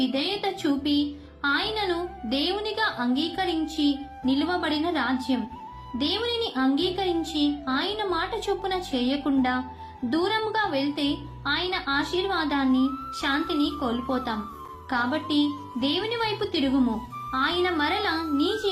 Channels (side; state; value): both; identical; correlation 1.00